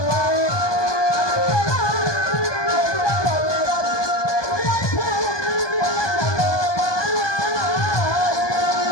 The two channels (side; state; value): right; late; 1.2 ms